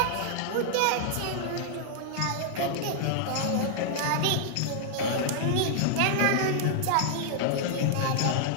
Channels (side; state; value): both; different; correlation -0.01